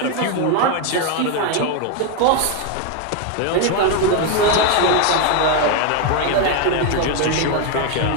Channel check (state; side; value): different; both; correlation 0.01